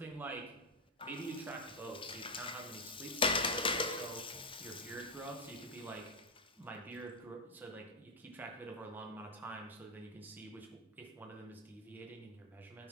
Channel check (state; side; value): normal; both; correlation 0.03